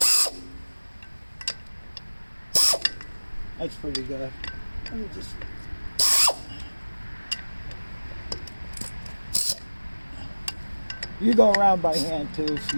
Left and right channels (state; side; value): inverted; both; correlation -1.00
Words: That's pretty good. Let me just... You go around by hand too if